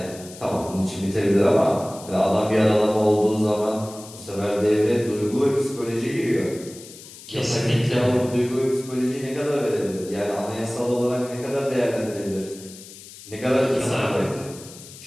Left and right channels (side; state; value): left; noise; hiss, 17 dB below the sound